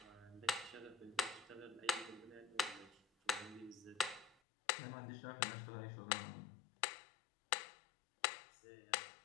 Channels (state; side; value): drops out; right; at 4.4 s